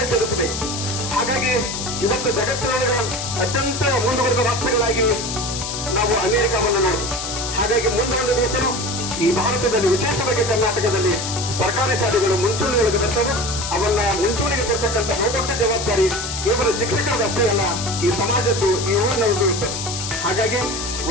ಸೇರಿಸಬೇಕು. ಹಾಗಾಗಿ ಇವತ್ತು ಜಗತ್ತಿನೊಳಗೆ ಅತ್ಯಂತ ಮುಂದುವರೆದ ರಾಷ್ಟ್ರಗಳಾಗಿ ನಾವು ಅಮೆರಿಕವನ್ನು ನೋಡ್ತೀವಿ. ಹಾಗಾಗಿ ಮುಂದೊಂದು ದಿವಸ ಈ ಭಾರತದಲ್ಲಿ, ವಿಶೇಷವಾಗಿ ಕರ್ನಾಟಕದಲ್ಲಿ ಸರ್ಕಾರಿ ಶಾಲೆಗಳು ಮುಂಚೂಣಿಯೊಳಗೆ ಬರ್ತವೆ. ಅವನ್ನ ಮುಂಚೂಣಿಗೆ ಕೊಡ್ತಕ್ಕಂಥ ಬಹುದೊಡ್ಡ ಜವಾಬ್ದಾರಿ ಕೇವಲ ಶಿಕ್ಷಕರಷ್ಟೇ ಅಲ್ಲ, ಈ ಸಮಾಜದ್ದು, ಈ ಊರಿನವ್ರದ್ದು ಇರ್ತದೆ. ಹಾಗಾಗಿ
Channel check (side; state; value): left; noise; hiss, 5 dB below the sound